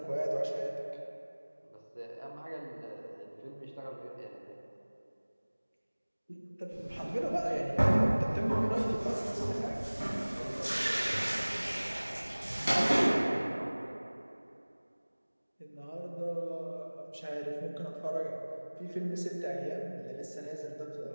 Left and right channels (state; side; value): inverted; both; correlation -1.00